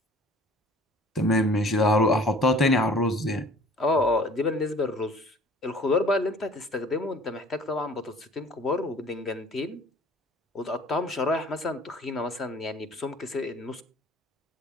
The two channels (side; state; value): both; normal; correlation 0.49